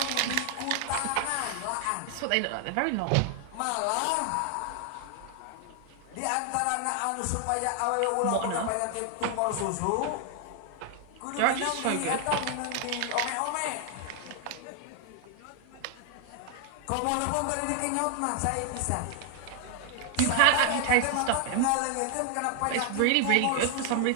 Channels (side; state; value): both; different; correlation 0.00